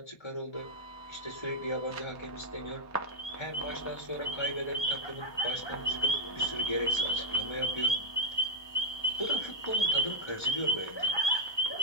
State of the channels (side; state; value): right; late; 1.2 ms